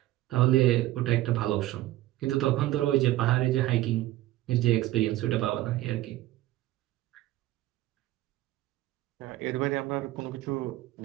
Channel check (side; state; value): left; quieter; 16.0 dB